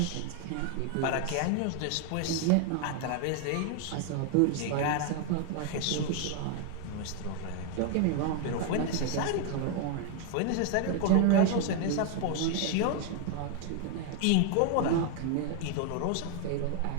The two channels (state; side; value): different; both; correlation 0.00